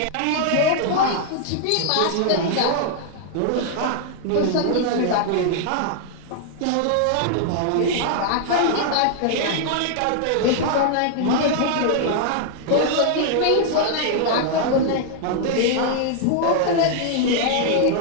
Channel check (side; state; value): both; different; correlation -0.01